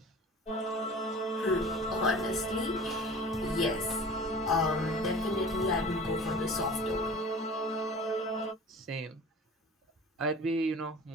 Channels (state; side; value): normal; both; correlation 0.41